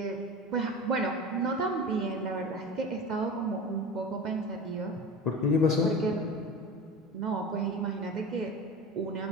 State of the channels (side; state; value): both; normal; correlation 0.31